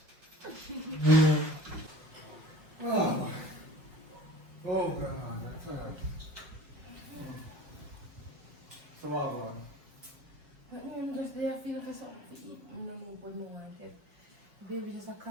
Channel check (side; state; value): left; late; 5.4 ms